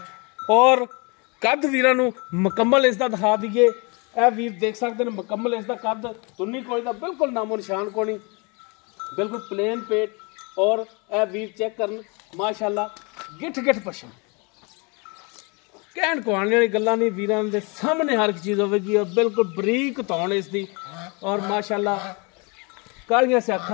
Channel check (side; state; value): right; quieter; 30.5 dB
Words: और कद वीरां नूं मुकम्मल इसका दिखा दीए। ए वीर देख सकते हैं मुकम्मल इसका कद, तुन्नी कोई दा बिल्कुल नामो निशान कोनी, बिल्कुल प्लेन पेट और ए वीर चेक करन माशाअल्लाह गिठ गिठ पछम कहण कुआने वाली गल्लां नहीं। वीरां दे सामने हर एक चीज़ होगी और बिल्कुल बरीक तौण इसकी और माशाअल्लाह कालियां से